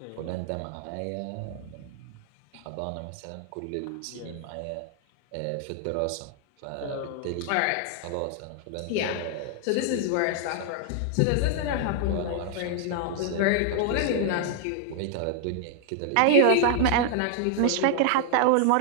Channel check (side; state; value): both; different; correlation 0.00